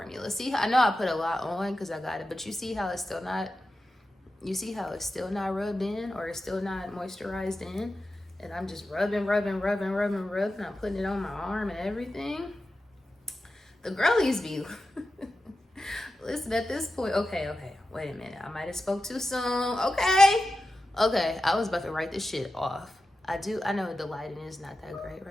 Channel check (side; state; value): both; normal; correlation 0.92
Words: See, I know I put a lot on because I got it, but you see how it's still not, rubbed in, or it's still not moisturized in. And I'm just rubbing. I'm putting it on my arm and everything. The girlies be, listen, at this point, okay, wait a minute. I might have spoke too soon. Okay, I was about to write this shit off. I know the lighting is not that great